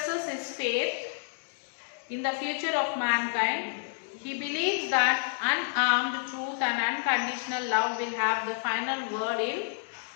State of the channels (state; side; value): silent; right; digital silence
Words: his faith in the future of mankind. He believes that unarmed truth and unconditional love will have the final word in